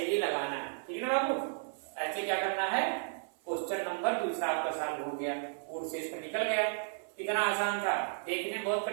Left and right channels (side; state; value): left; silent; 55 dB below the other